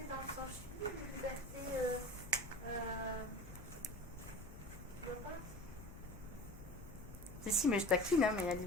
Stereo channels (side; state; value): left; noise; rumble, 14 dB below the sound